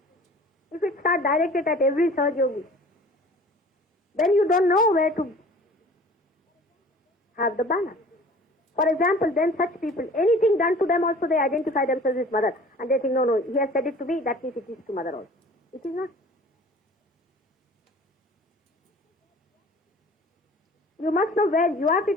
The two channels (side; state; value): both; normal; correlation 0.47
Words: If it starts directed at every Sahaja Yogi, then you don't know where to have the balance. For example, then such people, anything done to them also they identify themselves as mother. And they think, no, he has said it to me, that means it is to mother also. It is not. You must know where you are